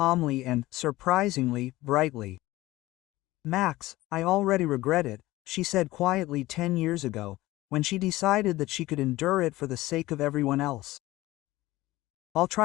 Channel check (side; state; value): right; quieter; 17.9 dB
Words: and, surprisingly, brightly. Max, I already regret it, she said quietly 10 years ago, when she decided that she could endure it for the sake of everyone else. I'll